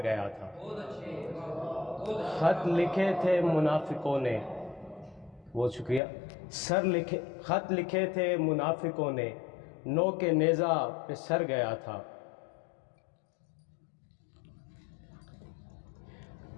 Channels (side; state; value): right; drops out; at 6.0 s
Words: گیا تھا۔ خط لکھے تھے منافقوں نے، بہت شکریہ، خط لکھے تھے منافقوں نے، نوک نیزہ پہ سر گیا تھا۔